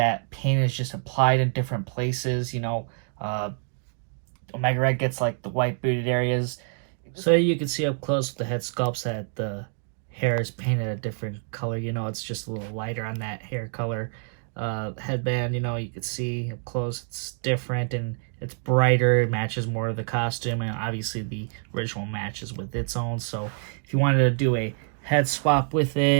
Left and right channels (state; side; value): silent; left; 60 dB below the other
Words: paint is just applied in different places. Omega Red gets like the white booted areas. So you can see up close with the head sculpts that the hair is painted a different color. It's just a little lighter on that hair color. Headband, you can see up close it's different and it's brighter. It matches more of the costume, and obviously the original matches with its own. So if you wanted to do a head swap with